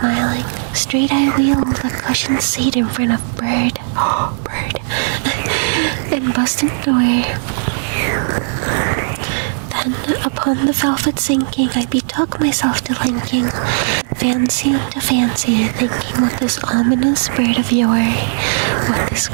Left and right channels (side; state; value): left; silent; 62 dB below the other